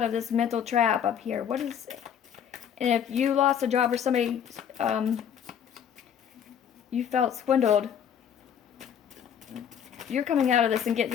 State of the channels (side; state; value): right; quieter; 8.5 dB